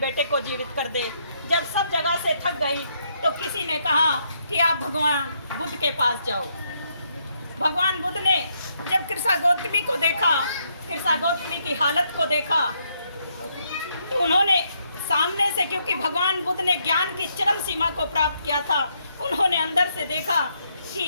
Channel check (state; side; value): inverted; both; correlation -0.75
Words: को जीवित कर दे। जब सब जगह से थक गई तो किसी ने कहा कि आप भगवान बुद्ध के पास जाओ। भगवान बुद्ध ने जब कृषा गौतमी को देखा, कृषा गौतमी की हालत को देखा, तो उन्होंने सामने से, क्योंकि भगवान बुद्ध ने ज्ञान की चरम सीमा को प्राप्त किया था, उन्होंने अंदर से देखा कि